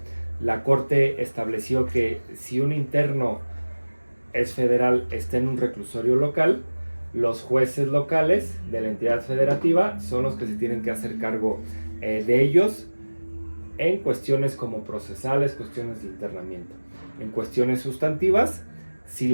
La Corte estableció que si un interno es federal, está en un reclusorio local, los jueces locales de la entidad federativa son los que se tienen que hacer cargo de ellos en cuestiones como procesales, cuestiones de internamiento. En cuestiones sustantivas sí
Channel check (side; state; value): both; inverted; correlation -1.00